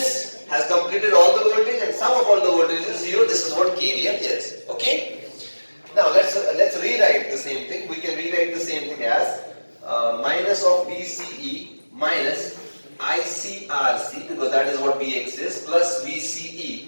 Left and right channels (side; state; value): both; inverted; correlation -1.00